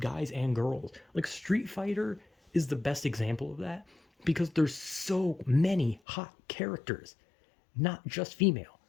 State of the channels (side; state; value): right; drops out; at 6.0 s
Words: and girls. Like Street Fighter is the best example of that because there's so many hot characters, not just female.